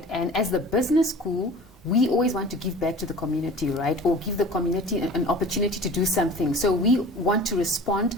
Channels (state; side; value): normal; both; correlation 0.42